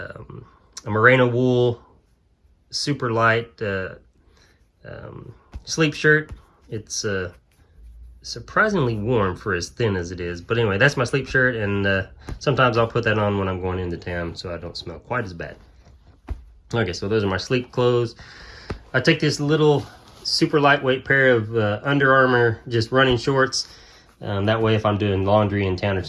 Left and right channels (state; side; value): identical; both; correlation 1.00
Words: merino wool super light sleep shirt. It's surprisingly warm for as thin as it is, but anyway, that's my sleep shirt, and sometimes I'll put that on when I'm going into town so I don't smell quite as bad. Okay, so those are my sleep clothes. I take this little super lightweight pair of Under Armour just running shorts. That way if I'm doing laundry in town or